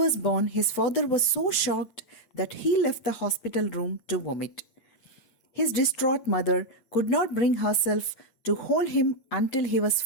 born, his father was so shocked that he left the hospital room to vomit. His distraught mother could not bring herself to hold him until he was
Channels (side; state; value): right; late; 8.7 ms